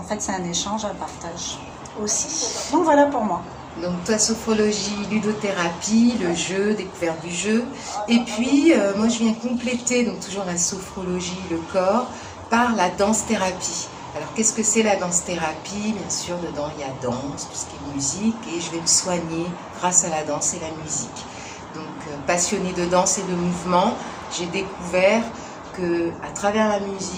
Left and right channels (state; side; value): identical; both; correlation 1.00